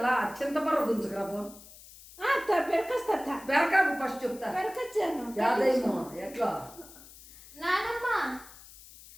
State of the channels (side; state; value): left; noise; hiss, 20 dB below the sound